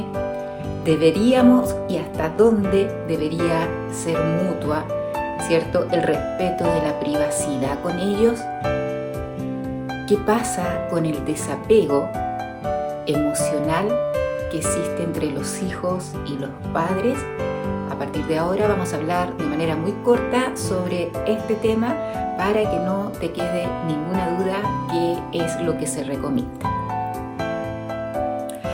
¿Deberíamos y hasta dónde debería ser mutua, cierto, el respeto de la privacidad con ellos? ¿Qué pasa con el desapego emocional que existe entre los hijos y los padres? A partir de ahora vamos a hablar de manera muy corta sobre este tema para que no te quede ninguna duda qué es lo que se recomienda.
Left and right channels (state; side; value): identical; both; correlation 1.00